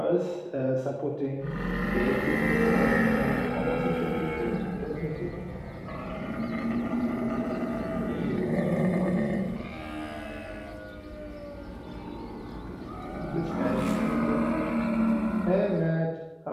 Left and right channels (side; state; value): both; identical; correlation 1.00